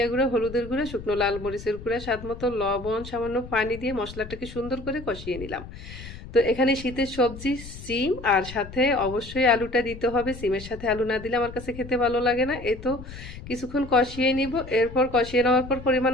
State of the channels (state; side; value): noise; left; rumble, 13 dB below the sound